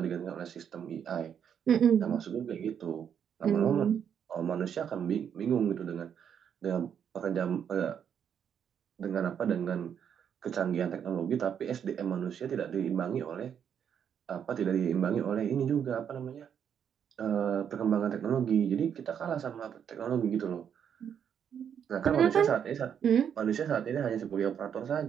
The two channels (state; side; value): quieter; left; 8.3 dB